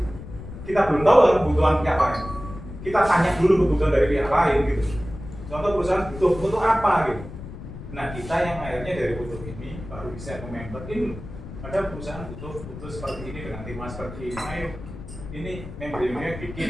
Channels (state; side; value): noise; left; rumble, 12 dB below the sound